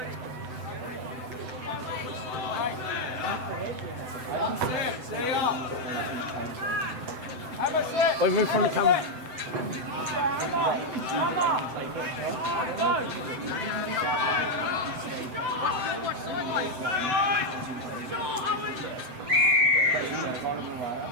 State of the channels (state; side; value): late; left; 7.9 ms